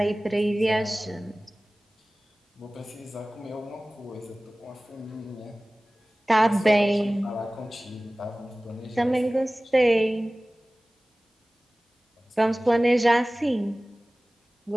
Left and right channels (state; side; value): normal; both; correlation 0.98